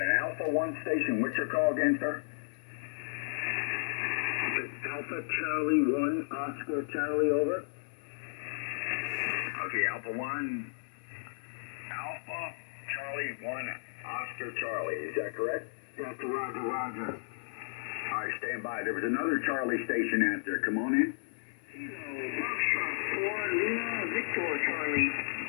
an Alpha 1 station. What's your call again, sir? Alpha Charlie 1, Oscar Charlie, over. Okay, Alpha 1. Alpha Charlie 1, Oscar Charlie. Is that correct? That's Roger, Roger. All right, stand by. There was another Charlie station out there. Come on in. Foxtrot 4, Lima, Victor Charlie.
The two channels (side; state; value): right; silent; digital silence